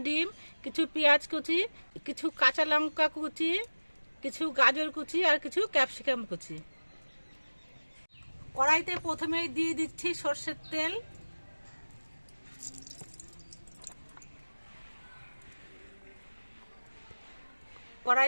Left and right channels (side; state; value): both; inverted; correlation -1.00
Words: ডিম, কিছু পেঁয়াজ কুচি, কিছু কাঁচা লঙ্কা কুচি, কিছু গাজর কুচি আর কিছু ক্যাপসিকাম কুচি। কড়াইতে প্রথমেই দিয়ে দিচ্ছি সরষের তেল।